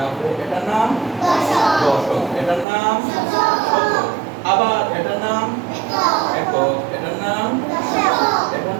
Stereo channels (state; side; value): drops out; left; at 2.7 s